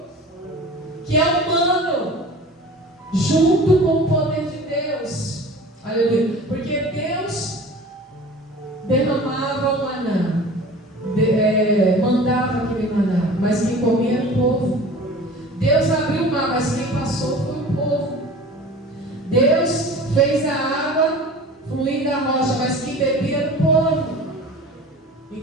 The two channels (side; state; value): both; normal; correlation 0.40